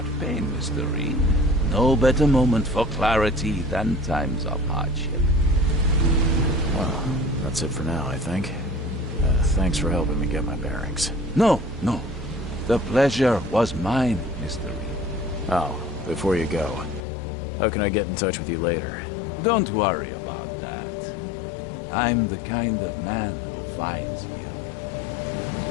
pain, Mr. Reed. No better moment for clarity than times of hardship. Well, that's it for now, I think. Thanks for helping me get my bearings. No. The pleasure was mine, Mr. Reed. Oh, before you go, how can I get in touch with you later? Don't worry about that. I'm the kind of man who finds you.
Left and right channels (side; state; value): right; drops out; at 17.1 s